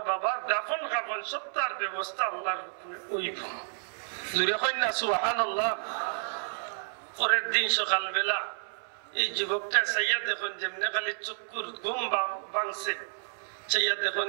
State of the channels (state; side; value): silent; left; 58 dB below the other